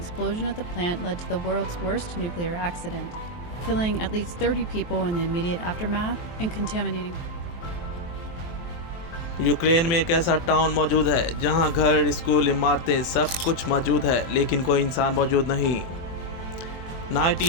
at the plant led to the world's worst nuclear accident, killing at least 30 people in the immediate aftermath and contaminating. Ukraine में एक ऐसा टाउन मौजूद है जहां घर, स्कूल, इमारतें सब कुछ मौजूद है, लेकिन कोई इंसान मौजूद नहीं।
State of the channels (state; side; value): late; right; 23 ms